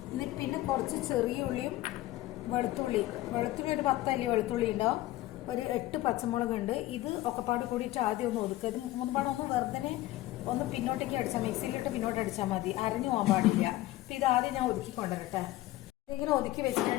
എന്നിട്ട് പിന്നെ കുറച്ച് ചെറിയ ഉള്ളിയും വെളുത്തുള്ളി ഒരു 10 അല്ലി വെളുത്തുള്ളി ഉണ്ടാവും. ഒരു 8 പച്ചമുളക് ഉണ്ട്. ഇത് ഒക്കെപ്പാട് കൂടിയിട്ട് ആദ്യം ഒന്ന് ഒതുക്കുക. ഇത് മുൻപാട് ഒന്ന് വെറുതെ ഒന്ന് പിന്നോട്ടേക്ക് അടിച്ചാൽ, മിക്സിയിലിട്ട് പിന്നോട്ട് അടിച്ചാൽ മതി, അരഞ്ഞു പോകാൻ പാടില്ല. അപ്പം ഇത് ആദ്യം ഞാൻ ഒതുക്കി കൊണ്ടുവരട്ടെ. ഇങ്ങനെ ഒതുക്കി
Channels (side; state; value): right; quieter; 16.5 dB